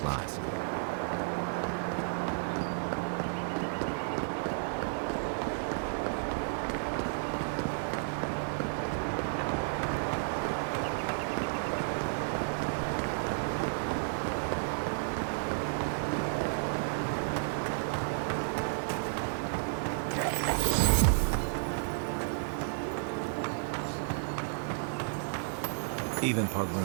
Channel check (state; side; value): silent; left; digital silence